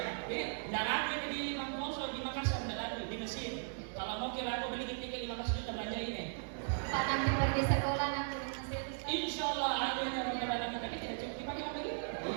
tidak lagi di Mangkoso, di Makassar, tidak lagi di Mesir. Kalau mau kira aku beli tiket 15 juta belanja ini. Pak nanti pergi sekolah nanti di Mesir. Insya Allah ada yang orang kita tidak cukup dipakai apa lagi?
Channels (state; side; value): silent; left; digital silence